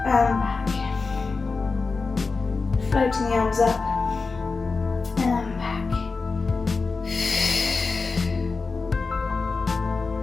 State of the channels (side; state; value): right; quieter; 4.3 dB